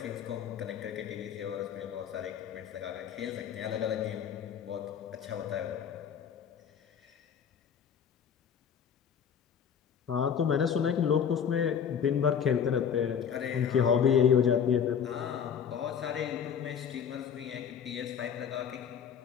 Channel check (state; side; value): quieter; right; 7.8 dB